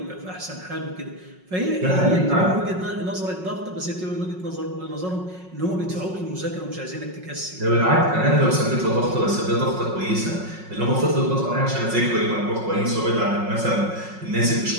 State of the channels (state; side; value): late; left; 5.5 ms